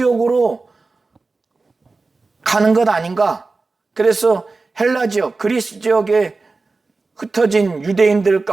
가는 것 아닌가? 그래서 헬라 지역, 그리스 지역에 흩어진 유대인들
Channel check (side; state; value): left; quieter; 3.8 dB